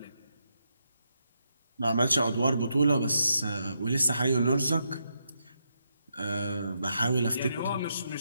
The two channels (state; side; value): inverted; both; correlation -0.81